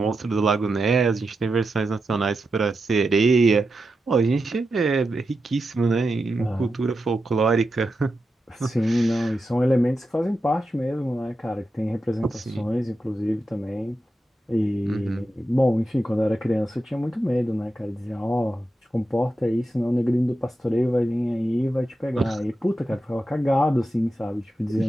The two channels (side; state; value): both; normal; correlation 0.89